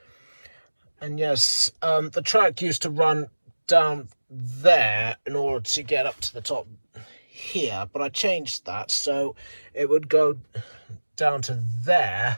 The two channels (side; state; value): both; inverted; correlation -1.00